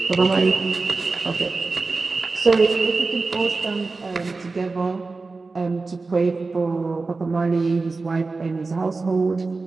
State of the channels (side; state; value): left; quieter; 3.8 dB